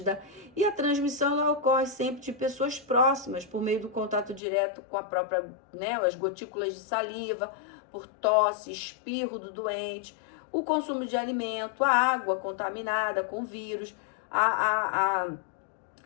E a transmissão ela ocorre sempre de pessoas próximas, por meio do contato direto com a própria, né, as gotículas de saliva, por tosse, espirro do doente, o consumo de alimento, a água contaminada com vírus,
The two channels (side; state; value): right; drops out; at 4.4 s